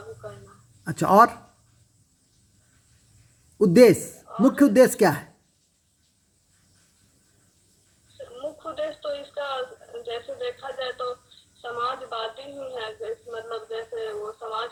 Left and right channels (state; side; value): identical; both; correlation 1.00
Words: करना। अच्छा, और उद्देश्य, मुख्य उद्देश्य क्या है? मुख्य उद्देश्य तो इसका जैसे देखा जाए तो समाजवादी ही है। मतलब जैसे वो